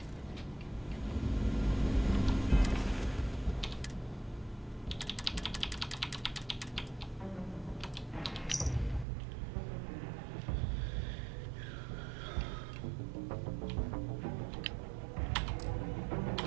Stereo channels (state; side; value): drops out; left; at 9.1 s